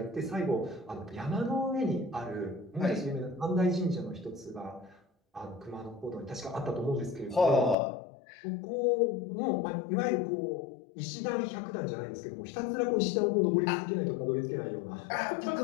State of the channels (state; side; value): drops out; right; at 7.8 s